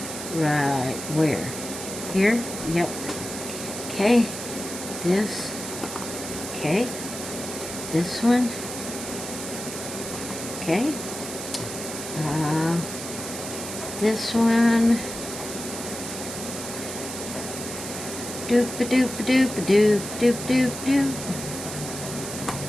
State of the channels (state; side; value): noise; right; hiss, 8 dB below the sound